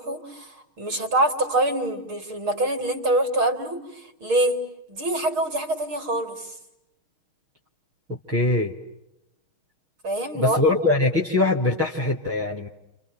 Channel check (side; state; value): left; late; 6.4 ms